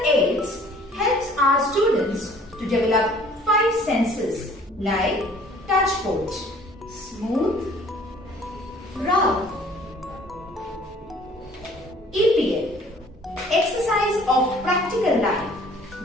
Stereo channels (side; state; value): both; normal; correlation 0.54